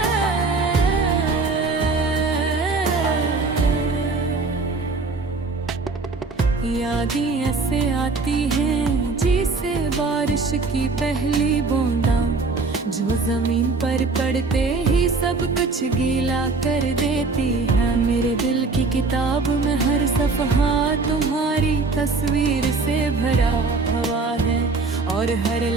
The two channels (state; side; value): quieter; left; 3.9 dB